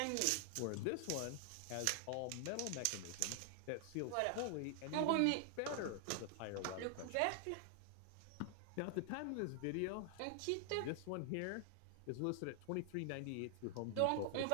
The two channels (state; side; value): different; both; correlation 0.00